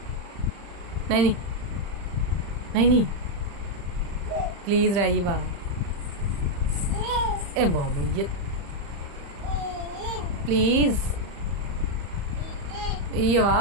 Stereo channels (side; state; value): left; late; 35 ms